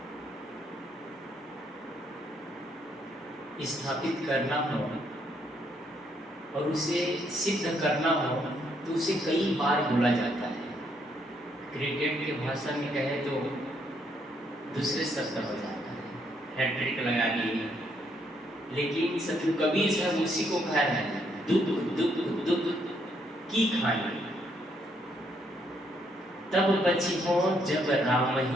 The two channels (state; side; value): normal; both; correlation 0.72